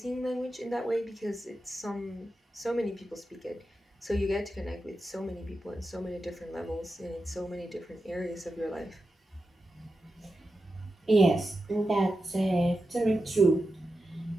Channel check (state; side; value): normal; both; correlation 0.90